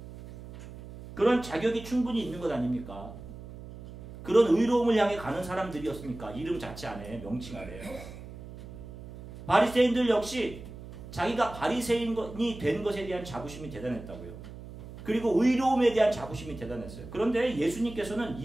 그런 자격이 충분히 있는 것 아닙니까? 그런 의로움을 향해 가는 사람들이었습니까? 이름 자체 안에, 명칭 아래요. 바리새인들 역시 자기가 바리새인이 된 것에 대한 자부심이 대단했다고요. 그리고 의로움에 대한 자부심이 대단했어요. 그런데 예수님께서는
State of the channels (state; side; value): noise; right; hum, 14 dB below the sound